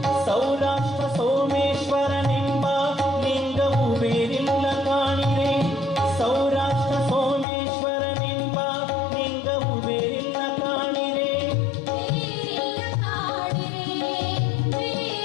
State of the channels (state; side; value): drops out; right; at 7.5 s